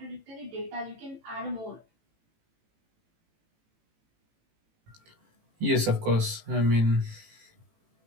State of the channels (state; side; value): late; left; 18 ms